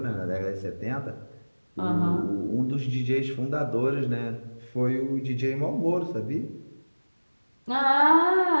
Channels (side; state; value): both; inverted; correlation -1.00